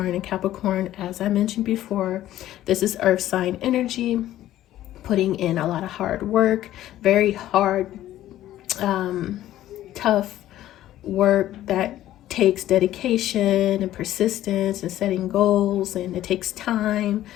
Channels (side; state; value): right; quieter; 13.6 dB